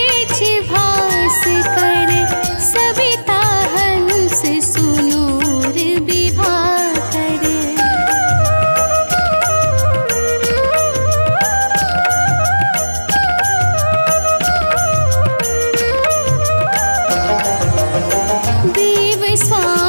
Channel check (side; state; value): both; inverted; correlation -1.00